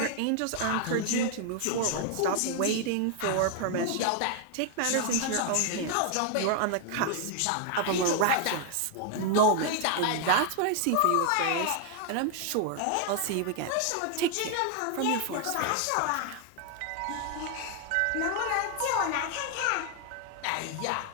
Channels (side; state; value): both; different; correlation 0.00